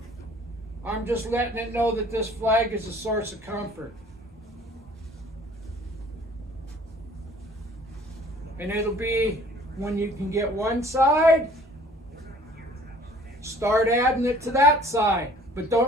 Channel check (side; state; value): both; normal; correlation 0.53